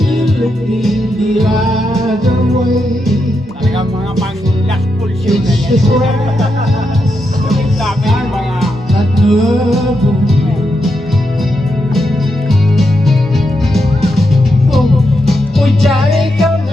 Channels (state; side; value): normal; both; correlation 0.84